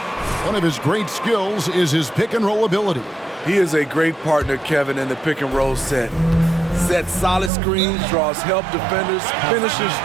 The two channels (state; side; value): drops out; left; at 7.5 s